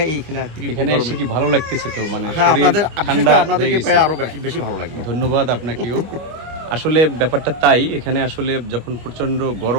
এইখানে তীব্র এখানে এসে গরমে। কি ভালো লাগতেছে তো? মানে হ্যাঁ, শরীর বিশেষ ঠান্ডা করে আপনাদেরকে হয়ে পাই গেছে। আরো বেশি ভালো লাগলো। ধন্যবাদ আপনাকেও। আসলে ব্যাপারটা তাই, এখানে আসলে যখন প্রচন্ড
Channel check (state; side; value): late; left; 25 ms